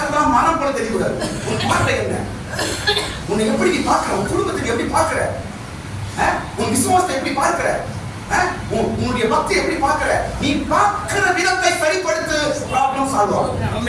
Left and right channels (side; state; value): both; identical; correlation 1.00